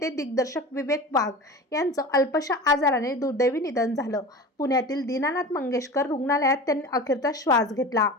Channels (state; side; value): normal; both; correlation 0.33